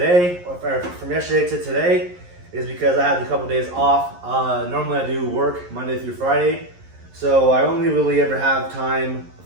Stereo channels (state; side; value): late; left; 11 ms